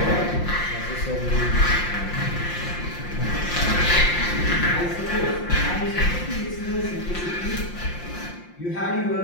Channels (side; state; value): right; late; 5.7 ms